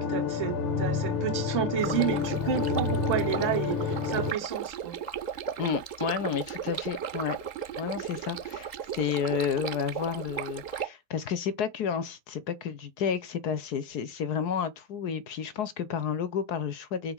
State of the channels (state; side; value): late; right; 3.8 ms